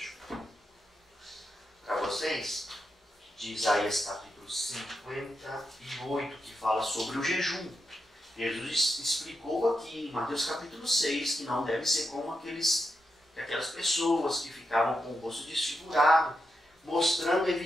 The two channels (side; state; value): both; normal; correlation 0.86